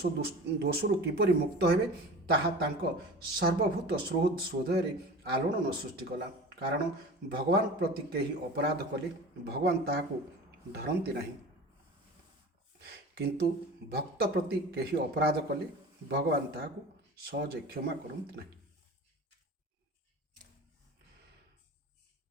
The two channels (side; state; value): both; normal; correlation 0.36